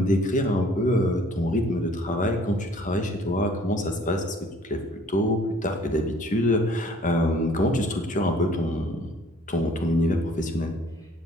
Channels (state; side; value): normal; both; correlation 0.55